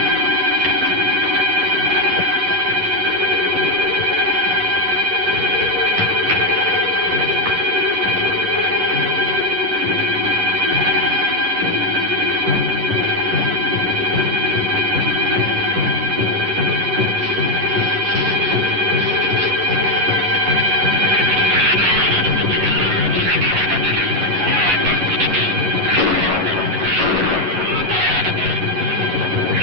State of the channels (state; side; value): late; left; 11 ms